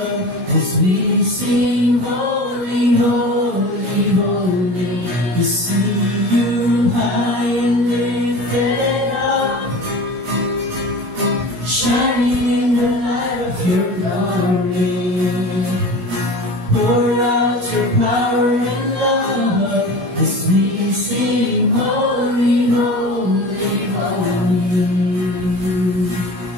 as we sing, holy, holy, holy. To see you high and lifted up, shining in the light of your glory. Pour out your power and love as we sing, holy, holy, holy.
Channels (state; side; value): late; left; 16 ms